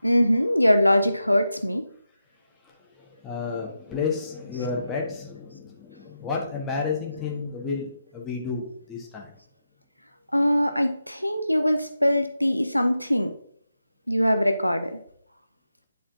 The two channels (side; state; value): both; inverted; correlation -0.87